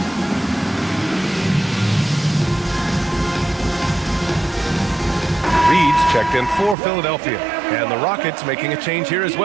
checked in for Philadelphia. And the Rockets making a change here as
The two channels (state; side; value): drops out; left; at 6.8 s